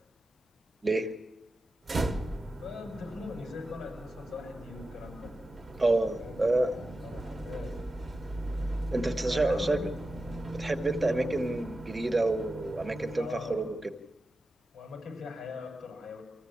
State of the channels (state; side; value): normal; both; correlation 0.91